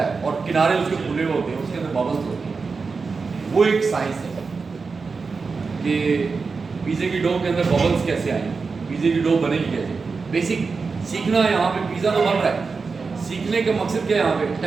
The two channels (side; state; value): left; quieter; 4.7 dB